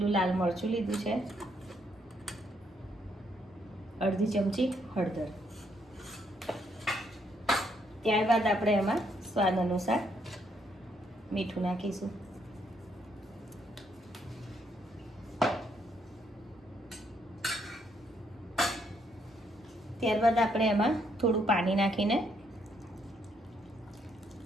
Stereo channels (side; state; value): both; normal; correlation 0.73